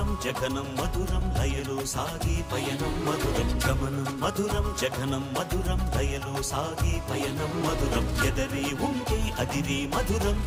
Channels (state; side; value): identical; both; correlation 1.00